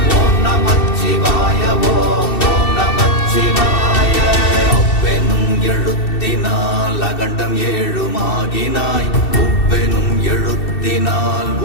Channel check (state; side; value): late; right; 2.7 ms